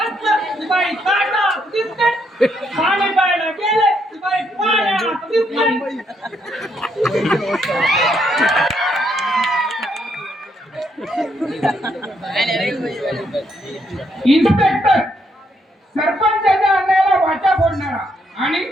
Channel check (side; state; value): both; normal; correlation 0.75